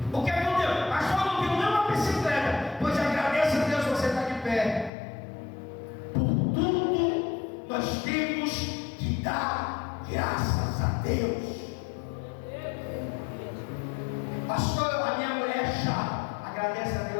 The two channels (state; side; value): drops out; right; at 4.9 s